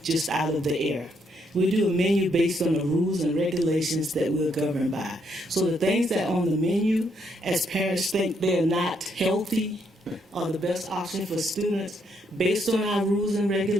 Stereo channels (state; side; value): normal; both; correlation 0.74